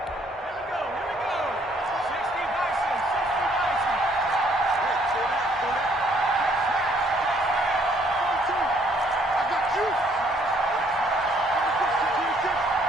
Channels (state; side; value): normal; both; correlation 0.65